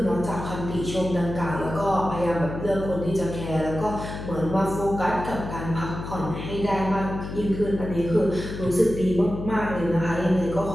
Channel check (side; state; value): left; noise; hum, 8 dB below the sound